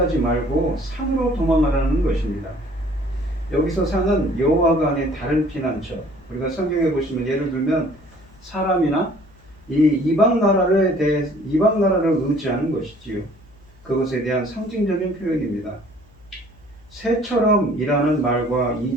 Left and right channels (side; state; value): left; noise; hum, 27 dB below the sound